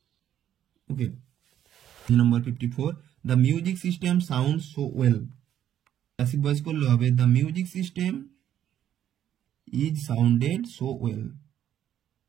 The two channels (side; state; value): left; quieter; 10.7 dB